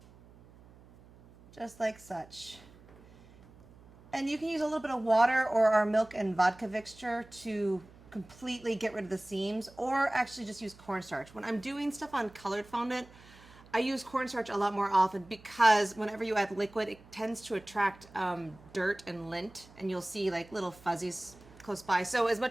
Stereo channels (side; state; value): right; noise; hum, 23 dB below the sound